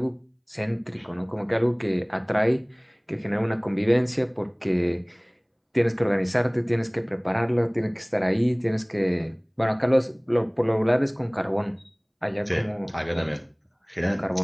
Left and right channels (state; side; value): identical; both; correlation 1.00